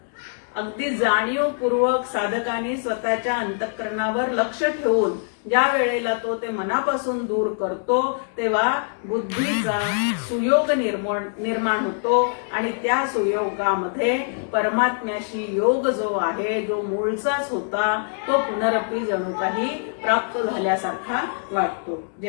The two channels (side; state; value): right; silent; digital silence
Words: अगदी जाणीवपूर्वक साधकाने स्वतःच्या अंतःकरणावर लक्ष ठेवून ज्या वेळेला तो ते मनापासून दूर करतो तेव्हा बुद्धीचा सुयोग निर्माण होतो आणि त्या सुयोगामध्ये परमात्म्याशी योग जो आहे, जो मूळचाच होता, तो पुनरपी जणू काही प्राप्त झाल्यासारखा वाटतो.